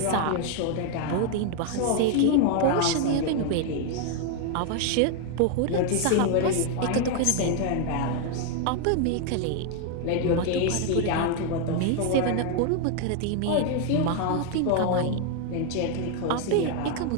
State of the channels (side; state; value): both; different; correlation 0.01